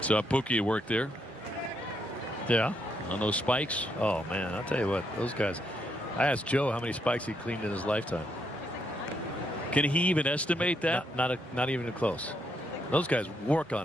So Pookie worked there. Yeah. On those spikes. Oh, man, I'll tell you what, those guys. I asked Joe how many spikes he cleaned in his lifetime. Can he even estimate that? Not even close. Those guys work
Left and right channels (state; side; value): normal; both; correlation 0.77